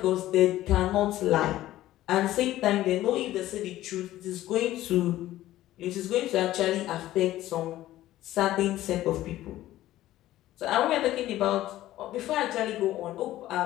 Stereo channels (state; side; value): quieter; right; 14.8 dB